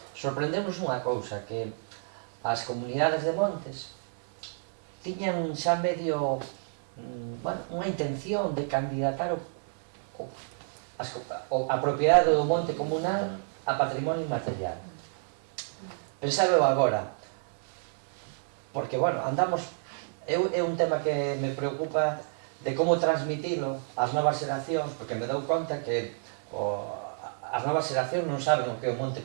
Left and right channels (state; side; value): silent; left; digital silence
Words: sorprendemos unha cousa, que as comunidades de montes tiñan xa medio unha intención de candidatar a propiedade do monte comunal a patrimonio inmaterial. Pensábeo agora, porque, andamos, é un tema que me preocupa de como transmitilo ás novas xeracións, porque me dou conta que as novas xeracións non saben o que é o monte